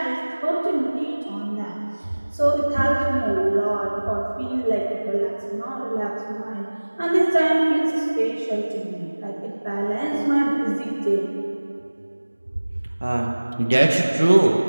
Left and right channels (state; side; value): inverted; both; correlation -1.00